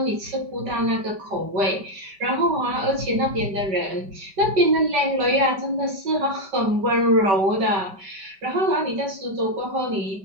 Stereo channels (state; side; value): late; left; 5.2 ms